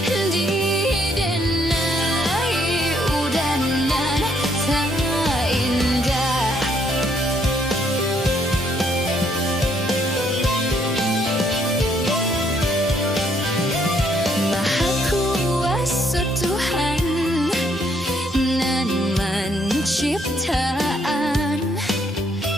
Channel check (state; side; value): normal; both; correlation 0.70